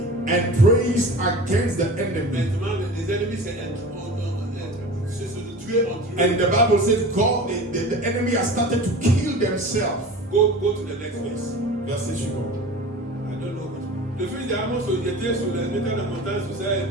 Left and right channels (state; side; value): normal; both; correlation 0.36